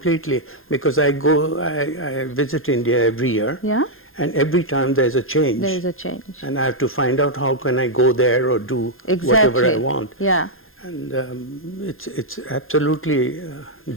because I visit India every year. Yeah. And every time there's a change. There is a change. And I have to find out how can I go there or do whatever I want. Yeah. And it's absolutely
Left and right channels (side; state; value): right; late; 0.60 ms